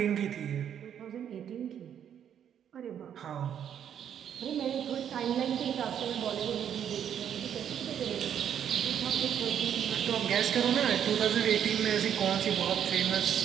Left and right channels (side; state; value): left; quieter; 9.1 dB